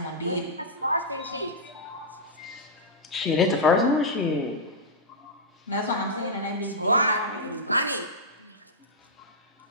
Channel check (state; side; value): normal; both; correlation -0.09